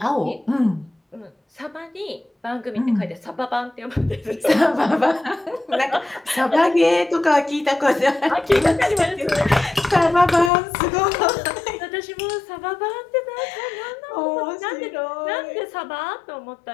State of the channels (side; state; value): right; drops out; at 10.5 s